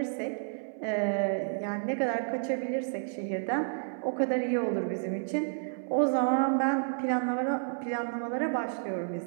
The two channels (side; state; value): left; silent; 57 dB below the other